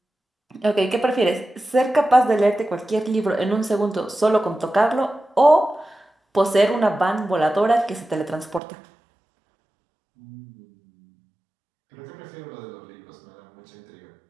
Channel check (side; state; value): left; drops out; at 8.6 s